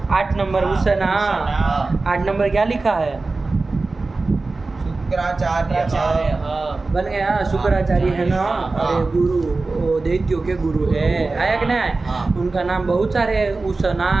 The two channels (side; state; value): left; quieter; 3.6 dB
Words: 8 नंबर उष्णा, 8 नंबर क्या लिखा है, शुक्राचार्य बन गया शुक्राचार्य है ना। अरे गुरु वो दैत्यों के गुरु है, आया कि नहीं? उनका नाम बहुत सारे हैं,